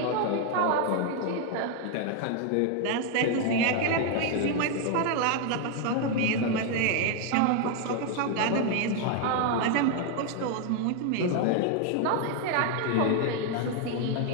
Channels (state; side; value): different; both; correlation 0.00